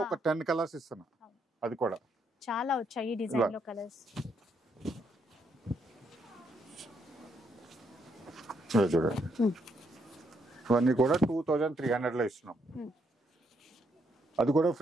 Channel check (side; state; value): both; normal; correlation 0.75